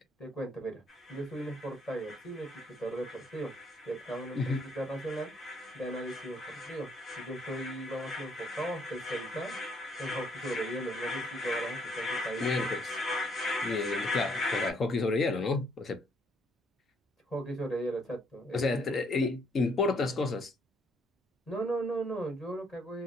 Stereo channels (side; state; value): both; normal; correlation 0.67